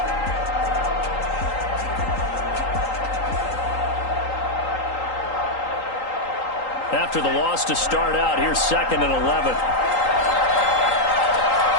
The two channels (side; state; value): right; late; 3.8 ms